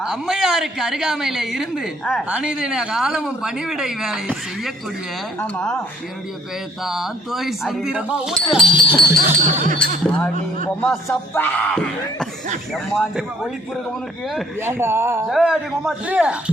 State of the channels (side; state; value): both; normal; correlation 0.60